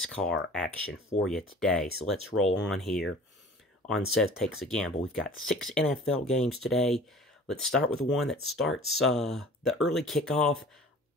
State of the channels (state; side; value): normal; both; correlation 0.45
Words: action for you today. So let's roll on here on Seth Takes a Gamble. We've got 6 NFL games today. Let's start with the one that starts the early kickoff.